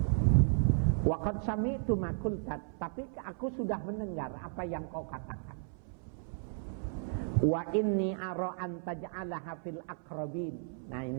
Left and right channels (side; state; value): left; silent; 55 dB below the other